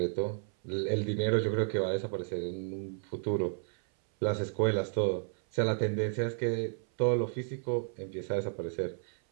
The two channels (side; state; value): left; silent; 56 dB below the other